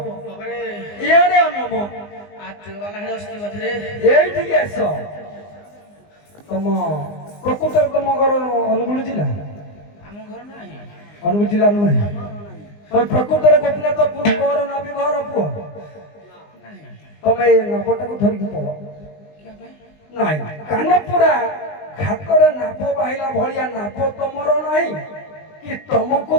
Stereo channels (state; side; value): late; right; 20 ms